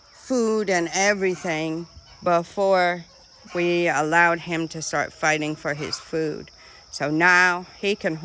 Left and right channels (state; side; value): identical; both; correlation 1.00